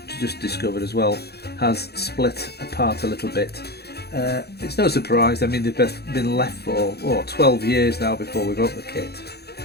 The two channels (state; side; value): late; right; 0.47 ms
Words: just discovered as well, has split apart a little bit. It's no surprise. I mean, they've been left for 12 years now before we wrote the kit,